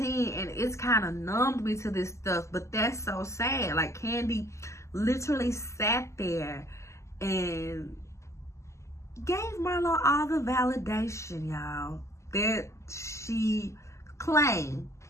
and it's kind of numbed me to this stuff, but that's so sad. Like, Candy literally sat there and gave Milo all the validation, y'all, that she claimed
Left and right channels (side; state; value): right; late; 0.14 ms